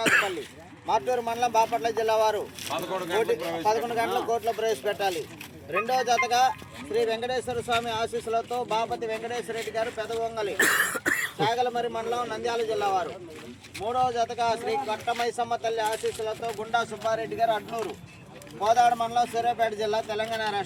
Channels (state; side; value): identical; both; correlation 1.00